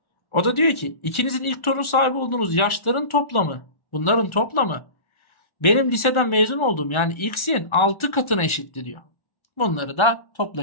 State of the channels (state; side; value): late; right; 1.4 ms